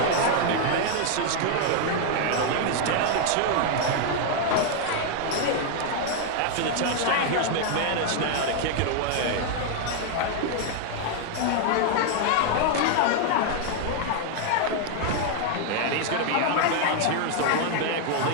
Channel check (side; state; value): both; different; correlation 0.00